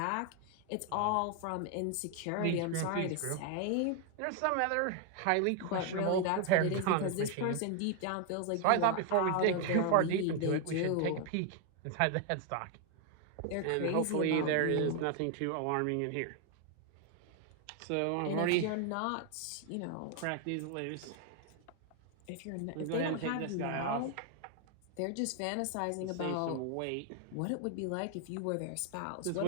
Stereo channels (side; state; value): both; different; correlation 0.00